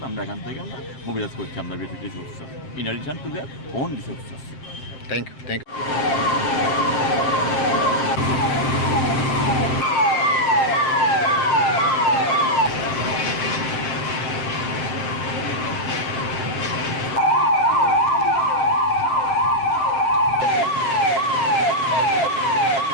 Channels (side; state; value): right; late; 7.6 ms